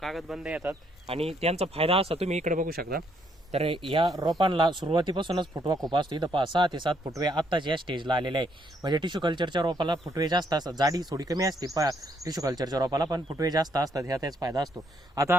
कागदबंद येतात आणि त्यांचा फायदा असा तुम्ही इकडे बघू शकता। तर या रोपांना सुरुवातीपासूनच फुटवा खूप असतो। इथं 6 ते 7 फुटवे आत्ताच या स्टेजला आलेले आहे। म्हणजे टिश्यू कल्चरच्या रोपाला फुटवे जास्त असतात, जाडी थोडी कमी असते टिश्यू कल्चरच्या रोपाला, पण फुटवे जास्त असतात, ह्या त्याच फायदा असतो। आता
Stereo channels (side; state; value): both; normal; correlation 0.71